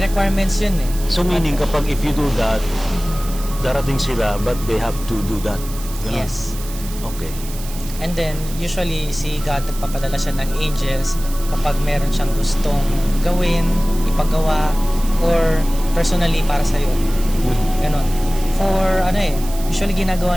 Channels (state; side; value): noise; right; hiss, 14 dB below the sound